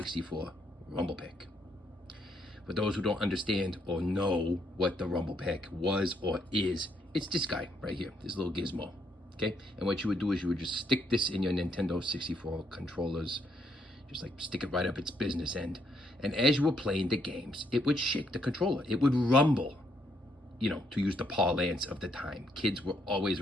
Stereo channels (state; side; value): normal; both; correlation 0.73